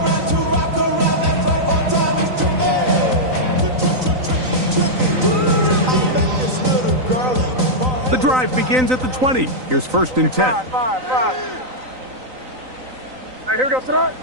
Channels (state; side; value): late; left; 3.9 ms